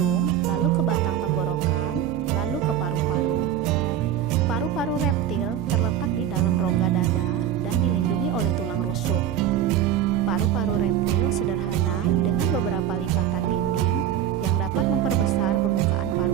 lalu ke batang tenggorokan, lalu ke paru-paru. Paru-paru reptil terletak di dalam rongga dada dan dilindungi oleh tulang rusuk. Paru-paru reptil sederhana dengan beberapa lipatan dinding yang dapat memperbesar permukaan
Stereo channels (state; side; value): quieter; left; 10.1 dB